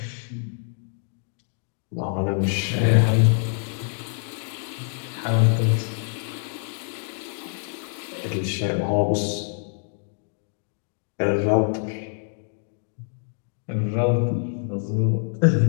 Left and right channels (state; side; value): silent; right; 61 dB below the other